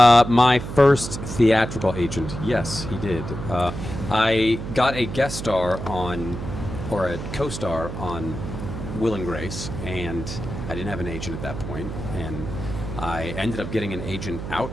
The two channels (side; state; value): right; noise; hum, 7 dB below the sound